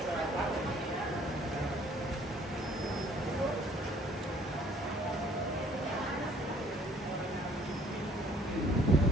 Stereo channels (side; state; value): both; normal; correlation 0.59